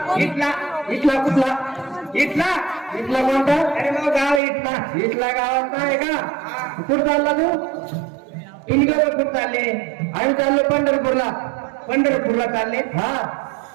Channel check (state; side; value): drops out; left; at 4.4 s